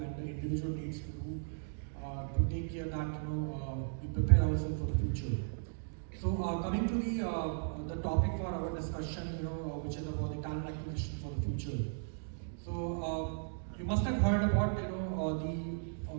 the individual needs to do to take care that we prepare ourselves for the future. So coming to the topic for our discussion, which is about the talent acquisition for the future. So you must have heard about the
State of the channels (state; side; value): silent; left; digital silence